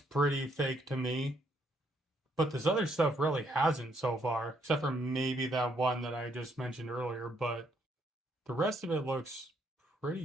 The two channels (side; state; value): both; normal; correlation 0.71